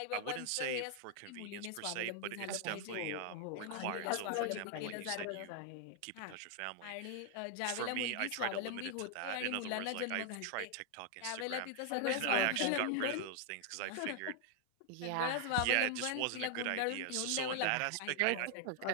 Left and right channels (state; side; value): different; both; correlation 0.00